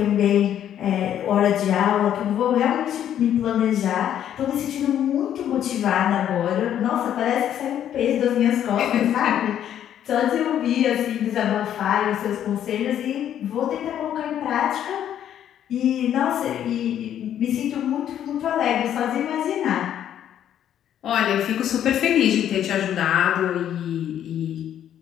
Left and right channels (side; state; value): right; quieter; 10.4 dB